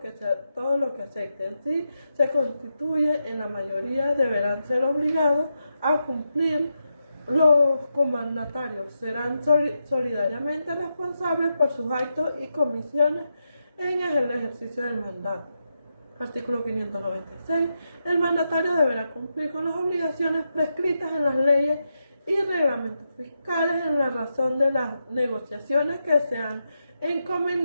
acepten. Si se constituye en la mayoría, deberán ser obligados a cumplir. Los comandatarios serán solidariamente responsables por sus actos y comisiones en el ejercicio del mandato. Artículo 596. El mandatario deberá cumplir con las obligaciones prescritas en las leyes y reglamentos fiscales en la razón de las negociaciones que se han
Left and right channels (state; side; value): inverted; both; correlation -0.85